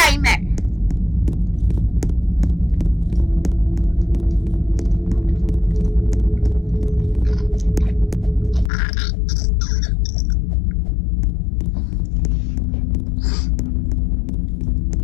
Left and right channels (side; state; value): right; drops out; at 8.7 s